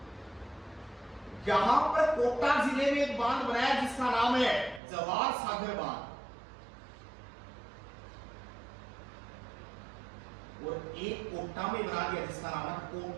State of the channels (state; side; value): drops out; left; at 4.8 s